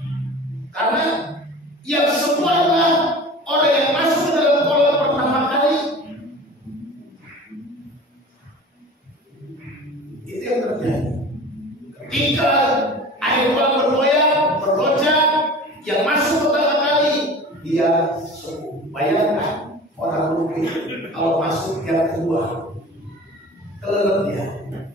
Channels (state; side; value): normal; both; correlation 0.39